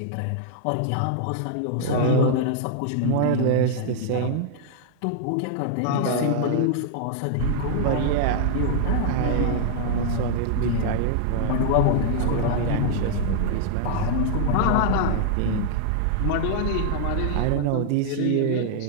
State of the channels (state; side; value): different; both; correlation -0.01